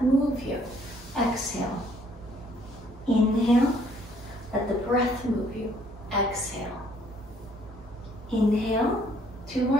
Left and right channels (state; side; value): normal; both; correlation 0.64